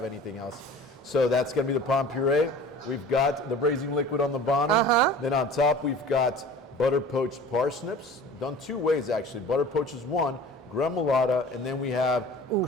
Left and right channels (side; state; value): both; normal; correlation 0.42